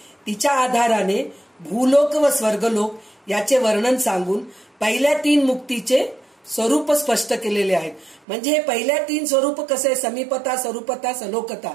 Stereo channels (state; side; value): drops out; left; at 8.2 s